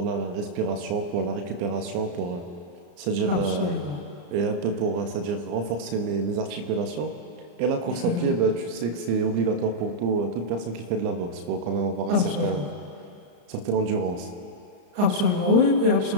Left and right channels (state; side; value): late; left; 34 ms